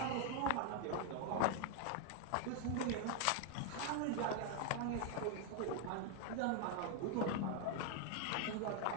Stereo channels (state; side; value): different; both; correlation 0.01